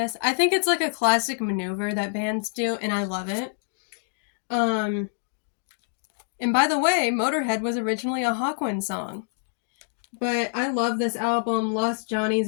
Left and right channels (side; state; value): right; silent; digital silence